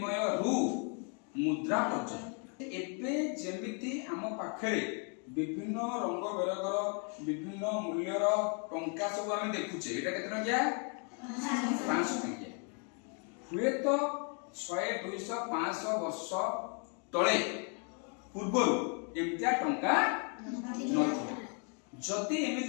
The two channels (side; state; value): right; quieter; 39.3 dB